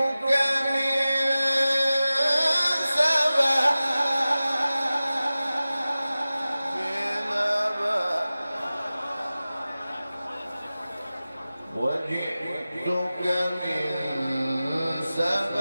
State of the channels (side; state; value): both; inverted; correlation -0.96